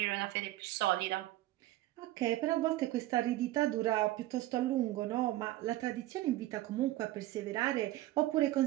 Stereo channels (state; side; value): quieter; left; 16.1 dB